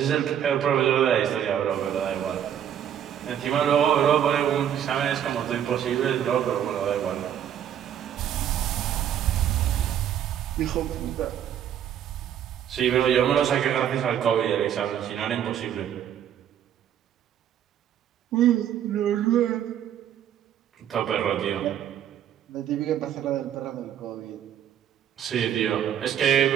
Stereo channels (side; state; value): left; quieter; 9.9 dB